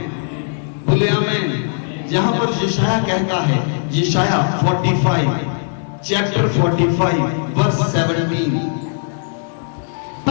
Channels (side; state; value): right; silent; 67 dB below the other